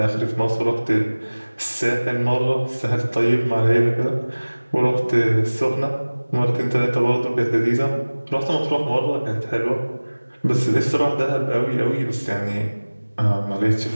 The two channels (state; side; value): inverted; both; correlation -1.00